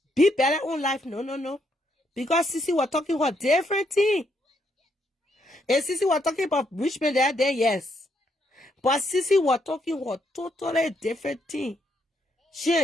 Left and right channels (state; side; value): normal; both; correlation 0.75